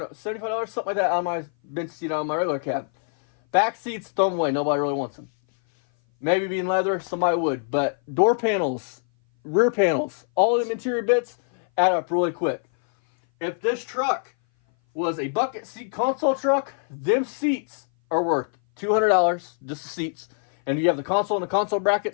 $75, something like that, on my bench seat on my regular cab. Back seats, throw them away. Nobody really wants them. Maybe being leather, somebody would. But door panels, rear panels, all them interior bits add up really quick. If this truck was a bucket seat console truck, them seats are worth $200, just the seats. And you have the console and the console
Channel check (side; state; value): right; silent; 58 dB below the other